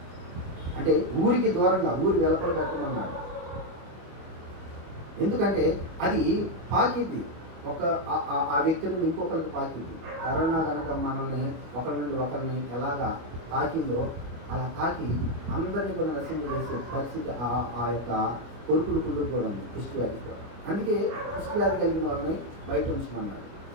అంటే ఊరికి దూరంగా, ఊరి వెలపల పెట్టమన్నాడు. ఎందుకంటే అది పాకింది, ఆ వ్యక్తి నుండి ఇంకొకరికి పాకింది. కరోనా కనుక మనల్ని ఒకరి నుండి ఒకరిని ఎలాగా తాకిందో అలా తాకి అందరినీ కూడా నశింపజేసే పరిస్థితి ఆ యొక్క కొరుకుడు పుండు కూడా ఉంది, కుష్టి వ్యాధి కూడా. అందుకే కుష్టి వ్యాధి కలిగిన వాళ్ళని బయట ఉంచుకున్నాడు.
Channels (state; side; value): late; left; 25 ms